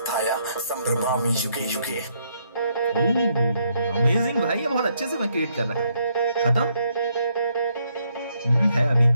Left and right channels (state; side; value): inverted; both; correlation -0.73